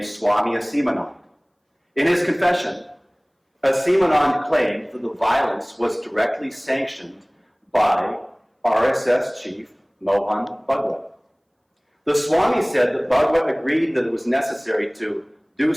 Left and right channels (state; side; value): identical; both; correlation 1.00